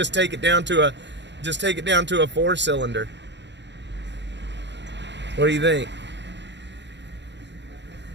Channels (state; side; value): late; left; 0.52 ms